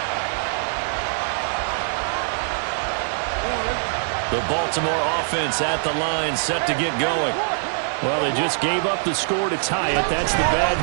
The Baltimore offense at the line, set to get going. Well, they just gave up the score to tie it. That's the bad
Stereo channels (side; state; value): left; silent; 63 dB below the other